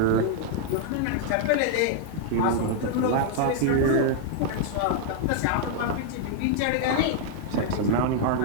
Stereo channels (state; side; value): different; both; correlation -0.01